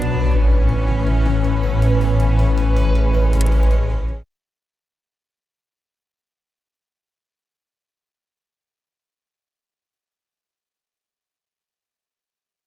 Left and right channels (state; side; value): normal; both; correlation 0.91